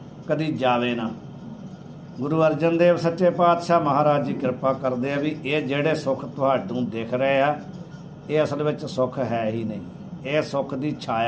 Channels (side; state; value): both; identical; correlation 1.00